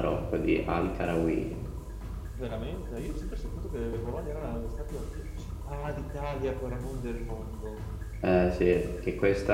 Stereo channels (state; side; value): identical; both; correlation 1.00